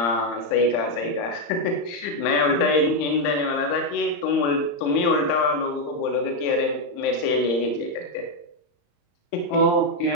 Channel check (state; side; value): late; right; 35 ms